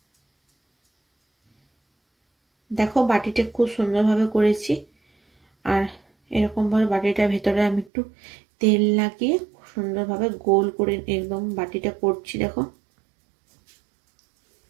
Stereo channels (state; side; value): drops out; left; at 7.9 s